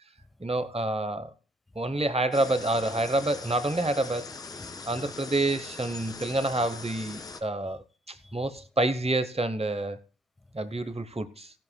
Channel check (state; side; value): normal; both; correlation 0.67